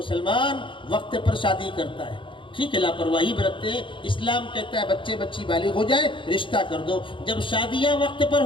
وقت پر شادی کرتا ہے، ٹھیک ہے، لاپرواہی برتتے ہیں۔ اسلام کہتا ہے بچے بچی بالغ ہو جائے رشتہ کر دو، جب شادیاں وقت پر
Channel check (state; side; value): late; right; 0.24 ms